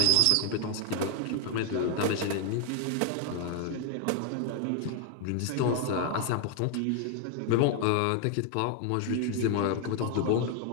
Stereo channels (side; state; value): both; different; correlation 0.00